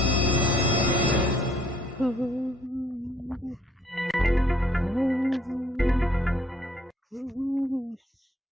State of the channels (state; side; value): normal; both; correlation 0.63